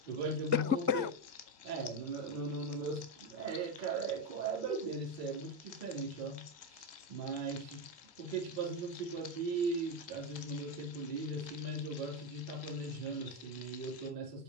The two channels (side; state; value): left; late; 1.8 ms